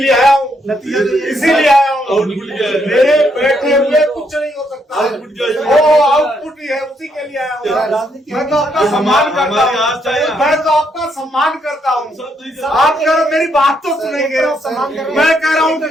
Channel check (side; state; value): both; normal; correlation 0.75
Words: आया हूँ, नतीजा इसीलिए आया हूँ। मेरे बैठे हुए कुछ नहीं हो सकता, वो आउटपुट ही है, उसी के लिए आया हूँ। मैं तो आपका सम्मान करता हूँ, मैं तो आपका सम्मान करता हूँ। आप अगर मेरी बात तो सुनेंगे, मैं कह रहा हूँ